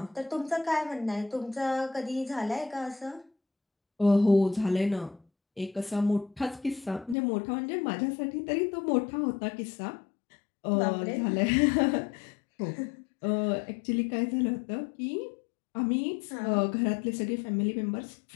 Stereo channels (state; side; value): drops out; right; at 7.2 s